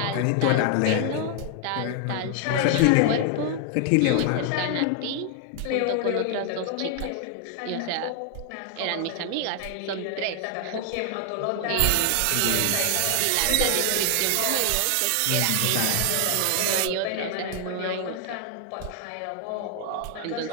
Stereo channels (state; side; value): different; both; correlation 0.00